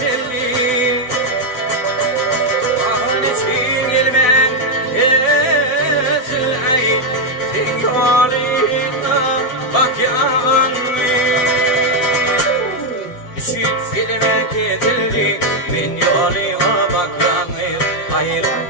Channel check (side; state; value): right; late; 8.0 ms